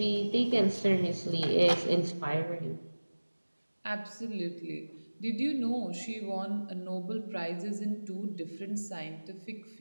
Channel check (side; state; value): both; inverted; correlation -1.00